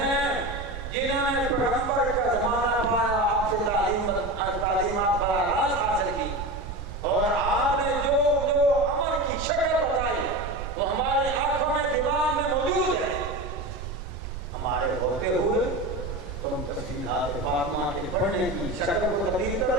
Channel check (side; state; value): right; noise; rumble, 8 dB below the sound